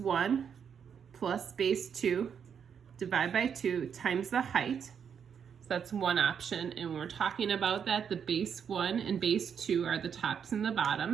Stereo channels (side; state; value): left; quieter; 7.4 dB